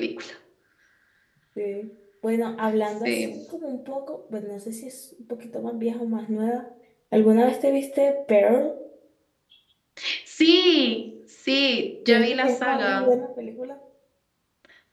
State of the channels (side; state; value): both; identical; correlation 1.00